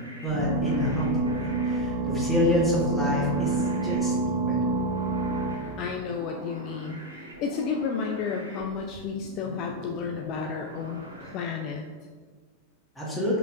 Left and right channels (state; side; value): normal; both; correlation 0.03